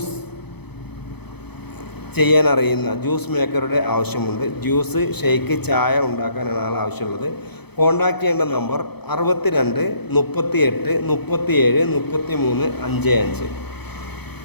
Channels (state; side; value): late; right; 0.98 ms